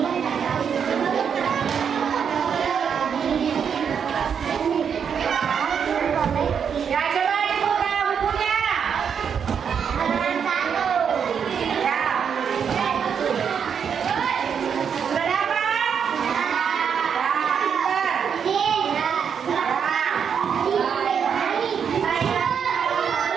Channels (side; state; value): left; quieter; 7.2 dB